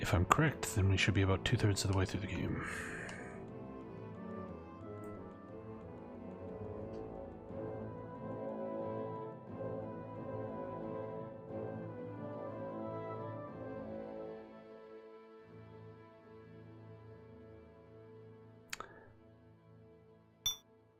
I'm correct, then we should be about 2/3 of the way through the game.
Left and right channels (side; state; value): both; identical; correlation 1.00